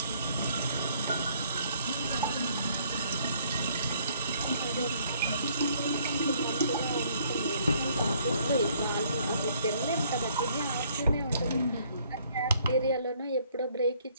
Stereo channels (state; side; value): inverted; both; correlation -0.63